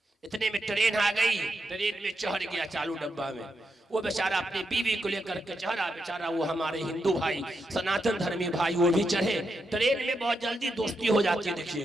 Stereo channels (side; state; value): both; normal; correlation 0.84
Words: इतने में ट्रेन आ गई, ट्रेन में चढ़ गया चालू डब्बा में। वो बेचारा अपनी बीवी को लेकर के चढ़ा, बेचारा वो हमारे हिंदू भाई, सनातन धर्मी भाई, वो भी चढ़े। ट्रेन में बहुत जल्दी दोस्ती हो जाती है,